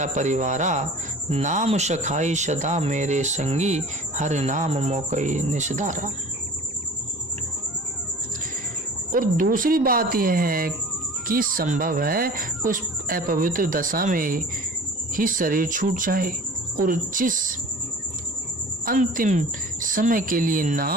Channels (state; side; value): normal; both; correlation 0.43